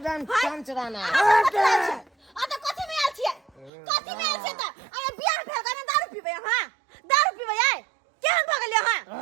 चंचराना आ तो कथि में आल छियै कथि में आल छियै त अरे बियाह भेल गने दारू पीबै हां दारू पीबै आय केहन भ गेलियै हां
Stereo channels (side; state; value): left; drops out; at 3.7 s